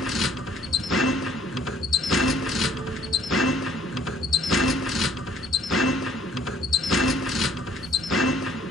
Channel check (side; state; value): both; normal; correlation 0.60